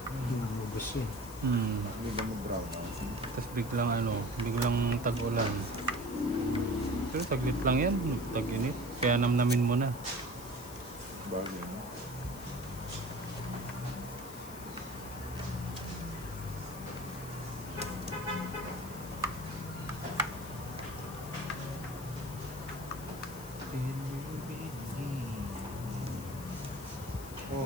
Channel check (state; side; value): noise; left; hiss, 15 dB below the sound